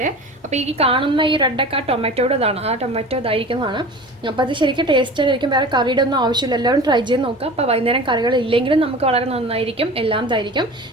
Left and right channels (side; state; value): both; normal; correlation 0.37